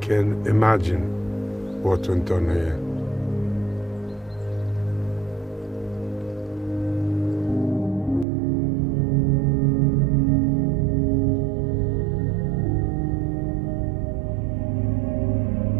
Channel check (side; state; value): left; drops out; at 8.2 s